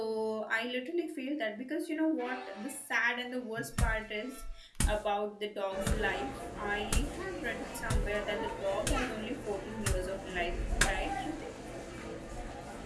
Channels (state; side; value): identical; both; correlation 1.00